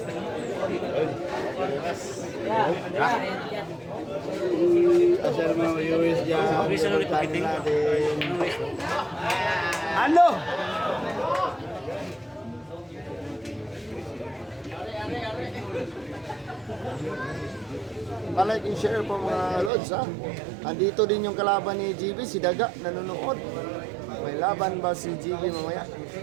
Asal mo US dyan. Natin. Ano? Pa-like and share po mga lods ha. Andito din yung kalaban ni GB, si Daga, nanonood. May laban ba si GB mamaya?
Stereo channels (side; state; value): left; drops out; at 19.7 s